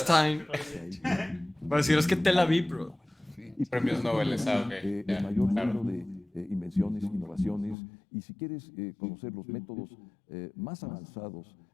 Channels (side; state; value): right; drops out; at 7.8 s